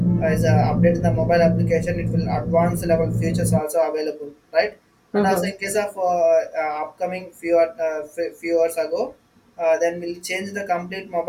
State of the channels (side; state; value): both; identical; correlation 1.00